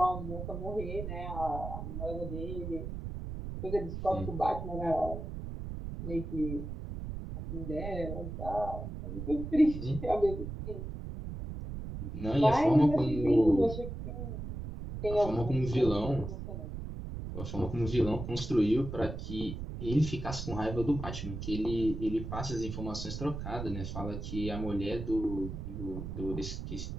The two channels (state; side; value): noise; right; rumble, 7 dB below the sound